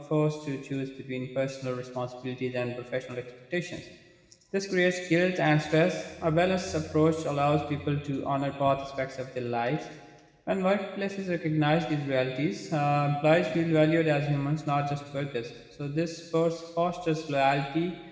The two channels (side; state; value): both; identical; correlation 1.00